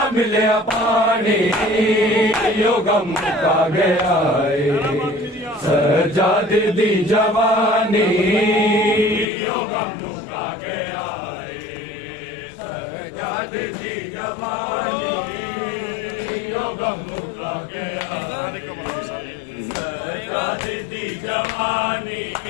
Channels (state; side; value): drops out; right; at 9.2 s